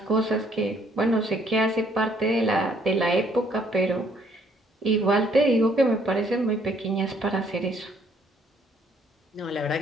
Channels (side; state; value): both; normal; correlation 0.65